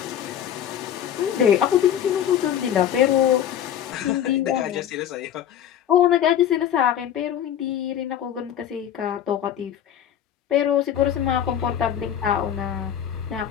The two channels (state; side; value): quieter; right; 9.9 dB